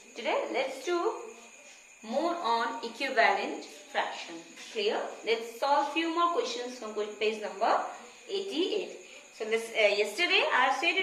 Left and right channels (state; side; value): identical; both; correlation 1.00